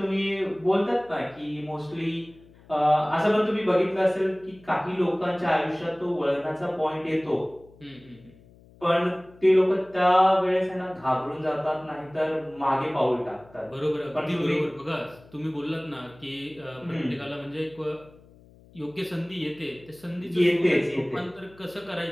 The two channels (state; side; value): noise; left; hum, 25 dB below the sound